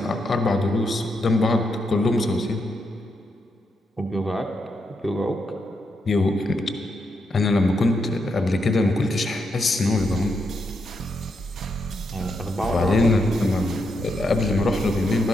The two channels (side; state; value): both; normal; correlation 0.81